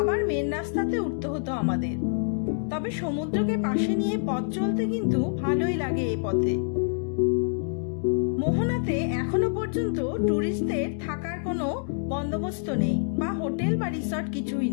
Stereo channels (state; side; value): silent; right; digital silence